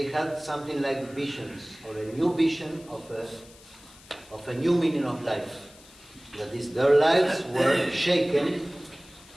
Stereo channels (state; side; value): noise; left; hiss, 23 dB below the sound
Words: had something like visions, or a new vision of a new meaning of life. That is, their lives were shaken